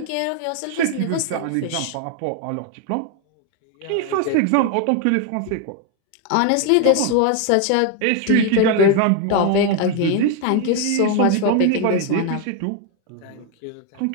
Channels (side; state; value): both; different; correlation 0.01